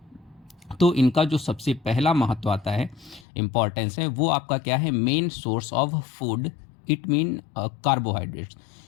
तो इनका जो सबसे पहला महत्व आता है, इम्पॉर्टेंस है, वो आपका क्या है? Main source of food. It mean carbohydrates.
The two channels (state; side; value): drops out; right; at 3.2 s